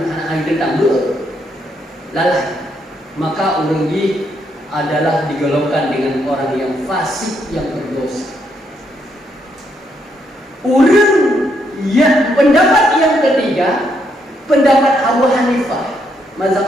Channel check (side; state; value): both; normal; correlation 0.75